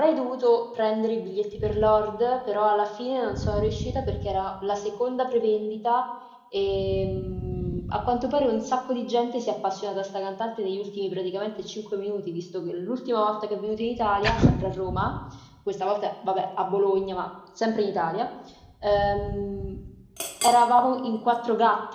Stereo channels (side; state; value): both; identical; correlation 1.00